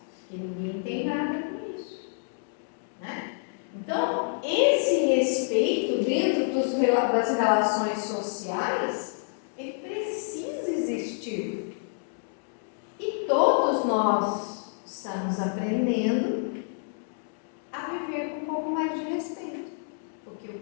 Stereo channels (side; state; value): right; silent; digital silence